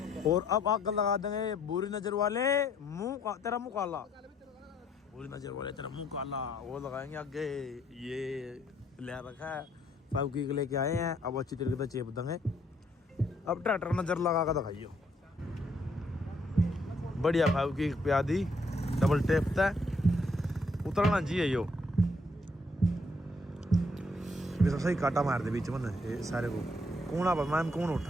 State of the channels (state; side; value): normal; both; correlation 0.68